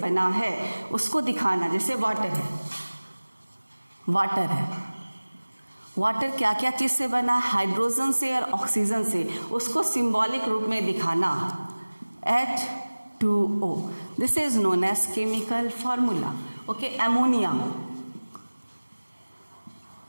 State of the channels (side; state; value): both; inverted; correlation -1.00